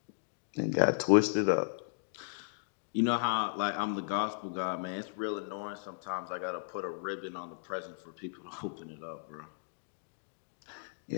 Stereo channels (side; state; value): right; silent; digital silence